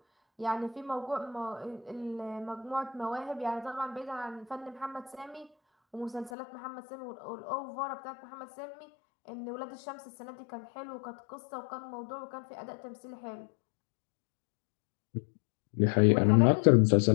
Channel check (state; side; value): drops out; right; at 6.3 s